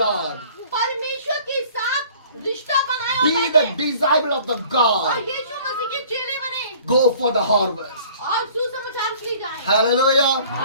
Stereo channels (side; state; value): both; inverted; correlation -0.52